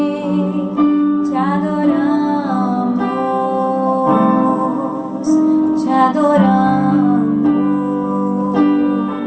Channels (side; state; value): both; identical; correlation 1.00